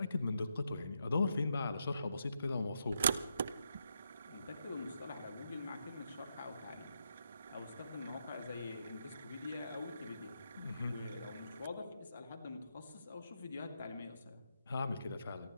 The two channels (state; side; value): inverted; both; correlation -0.82